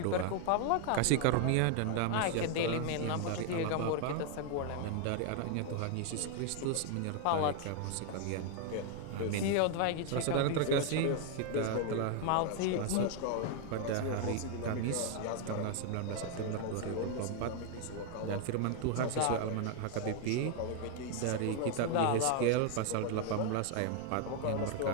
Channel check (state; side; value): different; both; correlation 0.00